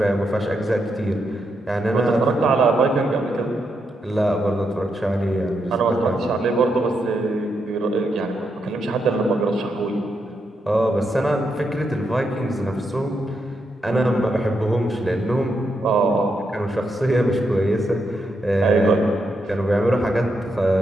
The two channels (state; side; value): normal; both; correlation 0.82